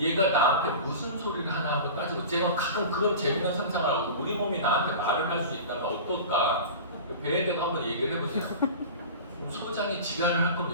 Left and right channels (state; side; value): inverted; both; correlation -0.34